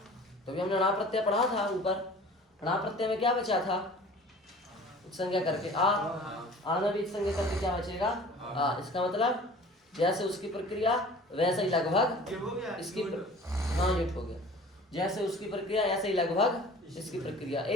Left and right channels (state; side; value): normal; both; correlation 0.45